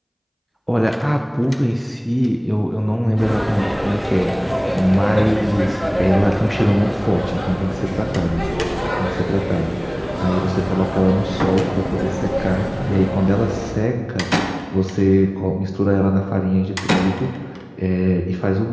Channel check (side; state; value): both; identical; correlation 1.00